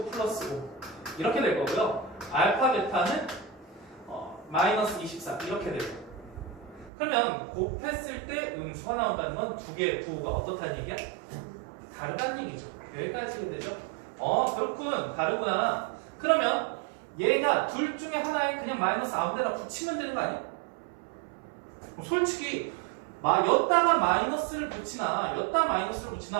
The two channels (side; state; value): left; drops out; at 6.9 s